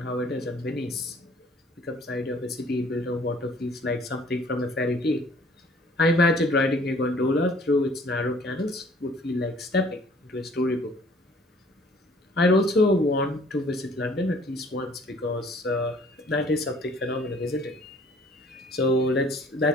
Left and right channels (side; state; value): both; normal; correlation 0.56